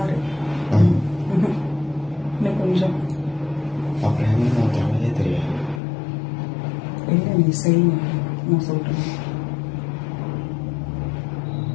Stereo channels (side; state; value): right; drops out; at 5.8 s